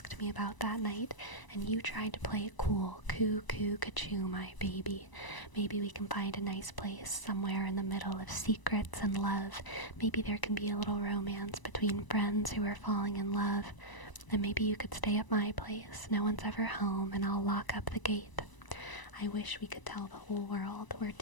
me about that night, and you tried to play it cool. Coo, coo, ka-choo, my baby. Maybe we can find a nice place somewhere in the middle of secrets and love. Maybe there can be a little romance between friends who are falling in love. And maybe you could stay at my place. No one's ever home, and I'll lock up the gate. I wish we could tell the whole world we're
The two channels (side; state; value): right; late; 1.0 ms